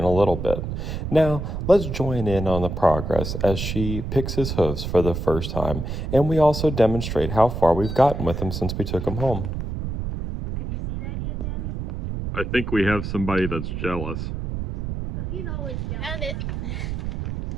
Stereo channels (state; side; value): noise; right; rumble, 4 dB below the sound